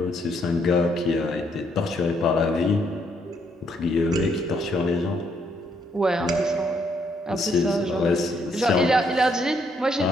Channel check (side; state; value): both; normal; correlation 0.73